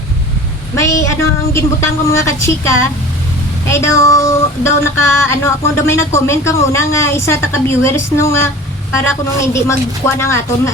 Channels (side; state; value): both; normal; correlation 0.40